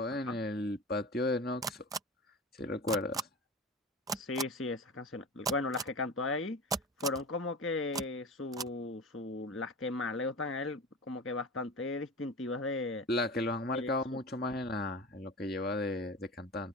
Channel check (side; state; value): both; normal; correlation 0.31